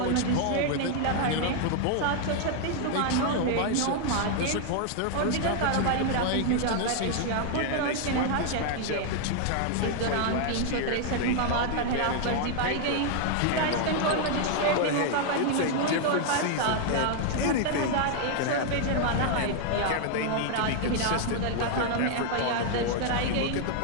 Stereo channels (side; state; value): both; different; correlation 0.00